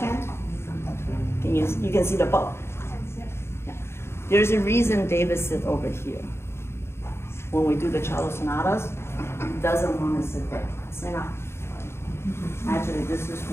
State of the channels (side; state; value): right; late; 0.12 ms